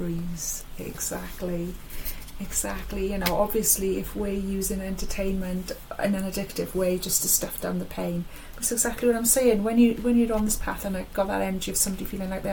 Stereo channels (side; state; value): both; identical; correlation 1.00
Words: Exactly. You know, obviously if we're using entertainment in an addictive way just to stuff down the pain, that's exactly what I'm saying. When you're on this path and got that energy of somebody feeling like they